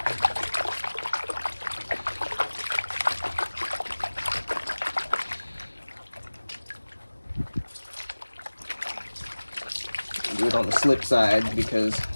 Do it on the slip side because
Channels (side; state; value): both; inverted; correlation -1.00